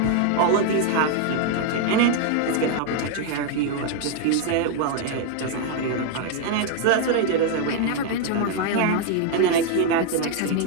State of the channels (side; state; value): both; different; correlation 0.01